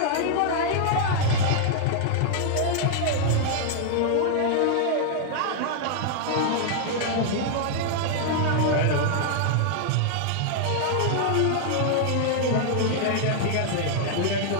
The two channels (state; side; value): different; both; correlation -0.01